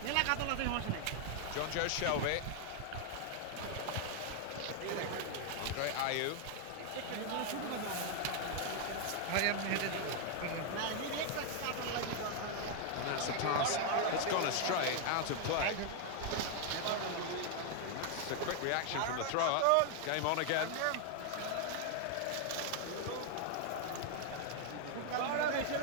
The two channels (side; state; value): both; different; correlation 0.00